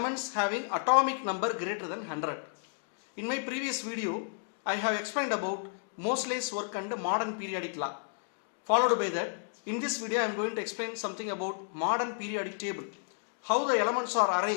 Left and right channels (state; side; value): silent; right; digital silence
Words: having atomic number greater than 100. In my previous video I have explained about Moseley's work and modern periodic law. Followed by that, in this video I am going to explain something about modern periodic table. How the elements are